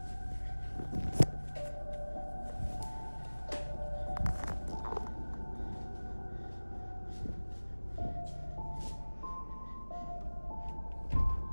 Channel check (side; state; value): both; inverted; correlation -1.00